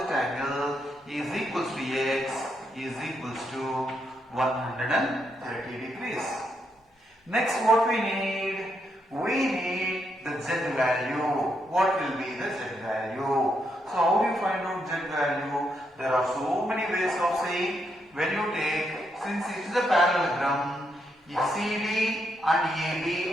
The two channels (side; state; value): both; normal; correlation 0.79